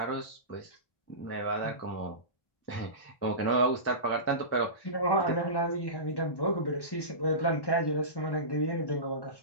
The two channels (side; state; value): right; late; 1.1 ms